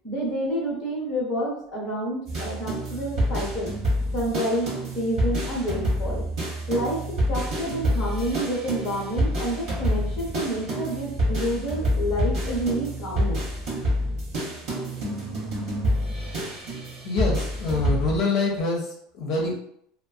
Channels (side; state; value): both; normal; correlation 0.53